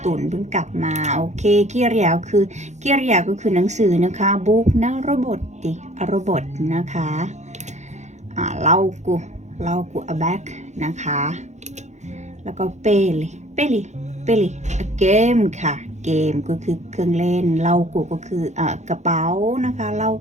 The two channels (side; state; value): left; late; 0.33 ms